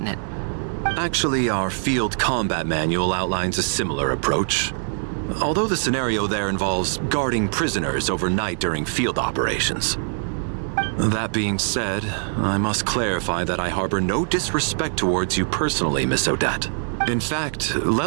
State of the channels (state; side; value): silent; left; digital silence